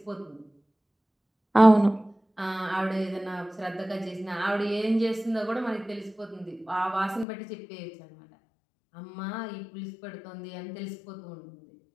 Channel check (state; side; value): drops out; right; at 7.2 s